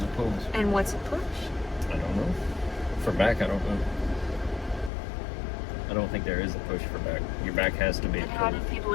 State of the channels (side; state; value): right; drops out; at 4.9 s